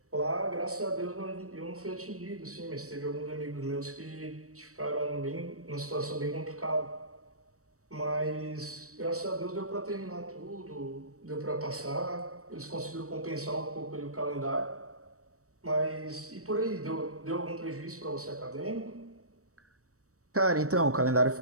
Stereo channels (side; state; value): left; late; 0.65 ms